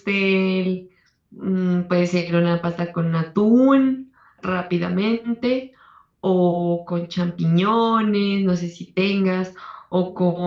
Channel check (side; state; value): both; identical; correlation 1.00